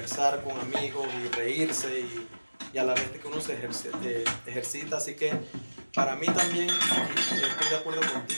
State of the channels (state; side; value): inverted; both; correlation -1.00